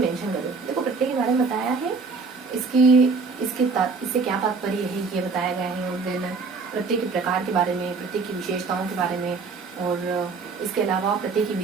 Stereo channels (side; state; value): left; quieter; 4.5 dB